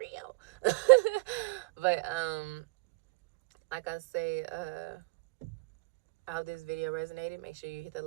But like I say, I hope this video resonated. Make sure you hit the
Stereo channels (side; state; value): left; quieter; 28.7 dB